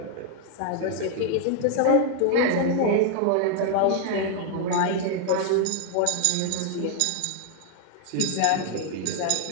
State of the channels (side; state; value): both; different; correlation 0.00